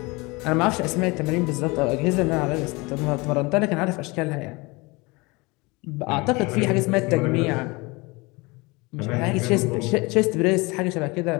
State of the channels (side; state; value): right; quieter; 25.3 dB